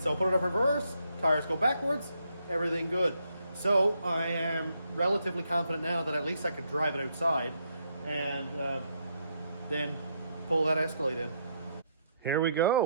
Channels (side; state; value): both; inverted; correlation -0.76